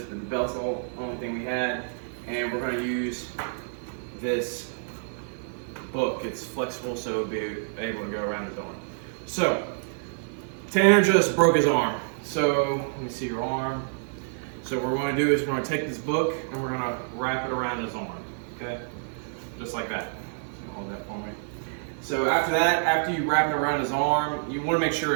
but the belt's the only thing we had. And we're going to use this book. It's flexible, so it'll be able to go around his arm. So, Tanner just broke his arm. So, let me see your arm. So what we're going to do is we're going to take this book and we're going to wrap it around his arm. Okay? Just like that. Hold that for me. So after that, after you wrap it around his arm, you want to make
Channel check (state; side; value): silent; left; digital silence